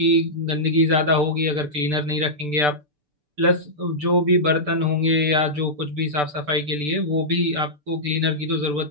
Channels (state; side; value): late; left; 6.8 ms